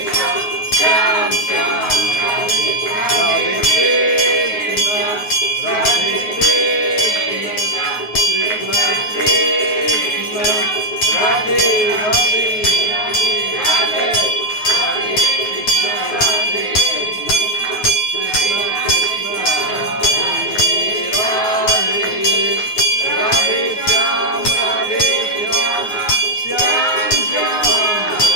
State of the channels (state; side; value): late; right; 9.5 ms